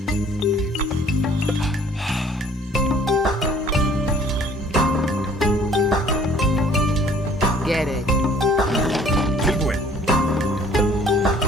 Get it. Tilbúin.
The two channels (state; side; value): normal; both; correlation 0.55